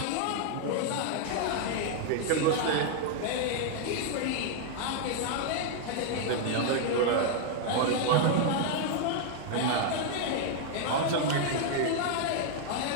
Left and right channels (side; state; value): both; different; correlation 0.00